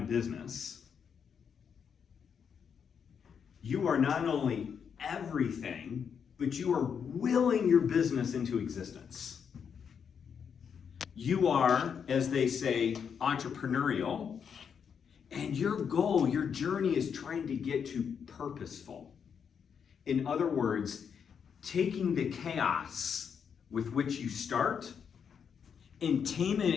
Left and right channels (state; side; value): quieter; right; 7.1 dB